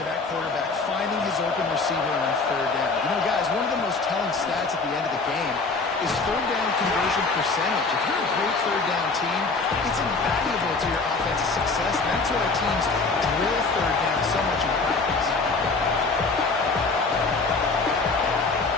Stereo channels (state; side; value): quieter; right; 4.0 dB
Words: that quarterback, finding his open receiver on third down. You know, guys, one of the most telling stats at the end of the game is third down conversion percentage. If you're a great third down team, it's invaluable to your offensive success. That's why teams drill third down so much in practice.